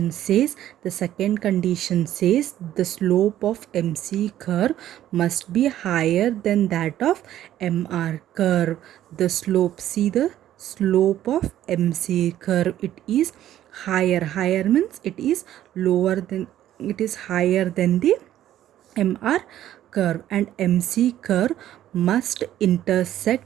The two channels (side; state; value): left; quieter; 12.3 dB